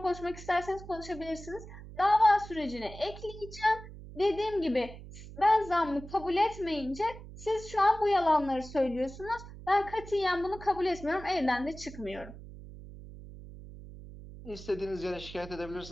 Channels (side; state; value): right; noise; hum, 15 dB below the sound